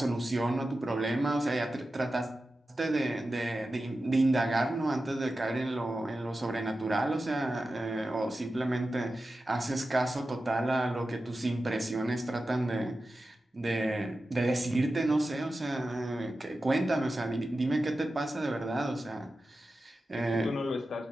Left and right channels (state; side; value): normal; both; correlation 0.93